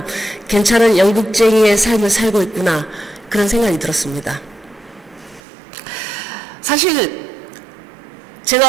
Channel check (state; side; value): drops out; left; at 5.4 s